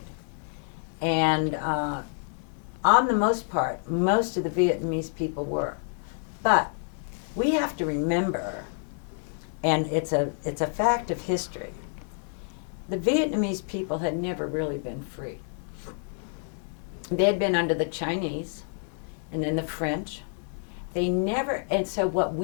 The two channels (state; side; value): silent; right; 59 dB below the other